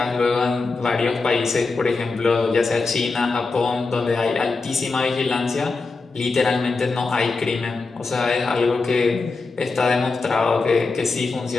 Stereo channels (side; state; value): right; quieter; 4.0 dB